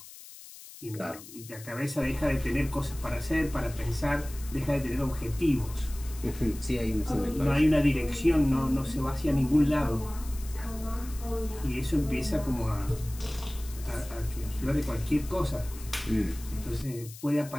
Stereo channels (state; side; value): noise; left; hiss, 17 dB below the sound